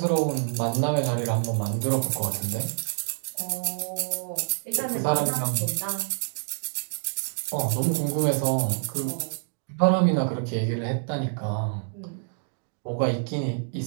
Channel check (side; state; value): left; silent; digital silence